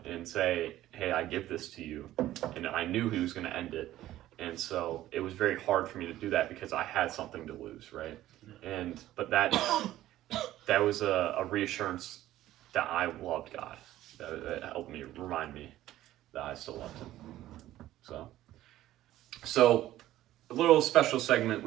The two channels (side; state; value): left; quieter; 14.3 dB